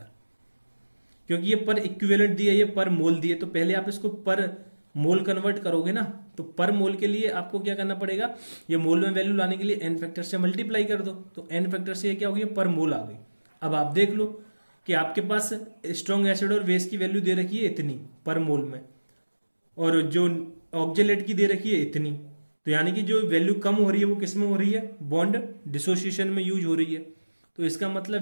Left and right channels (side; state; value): both; inverted; correlation -1.00